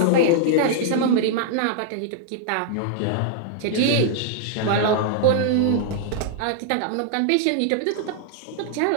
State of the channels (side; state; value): both; different; correlation -0.01